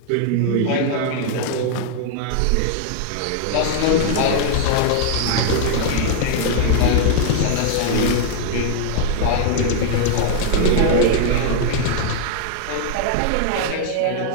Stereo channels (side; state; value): both; different; correlation 0.00